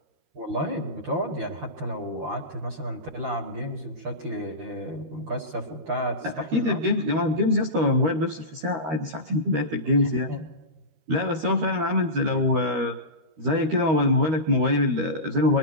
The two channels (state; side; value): late; left; 13 ms